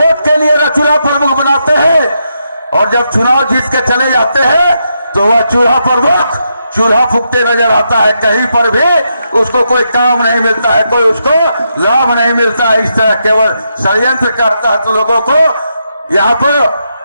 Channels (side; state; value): both; inverted; correlation -0.82